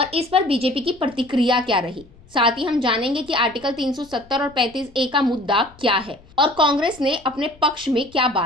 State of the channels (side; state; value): left; noise; rumble, 26 dB below the sound